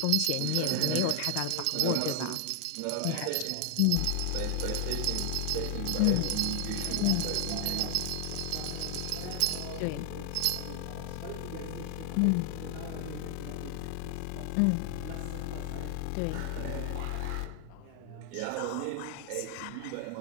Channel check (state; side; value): different; both; correlation 0.00